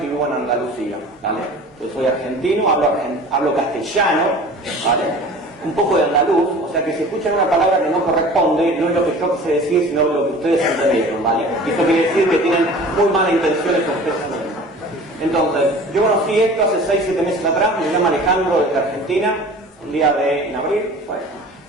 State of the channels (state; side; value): normal; both; correlation 0.42